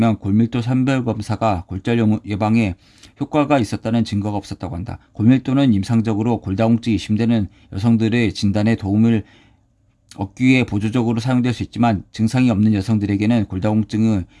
골밀도 선별검사가 골절 예방에 효과가 있었다는 증거가 없었다고 한다. 골밀도는 임상적으로 골다공증이 의심되는 여성들의 진단에 도움을 얻기 위해 보조적으로 사용될 수 있지만 증상이 없는 여성들에게는 골다공증은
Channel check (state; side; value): identical; both; correlation 1.00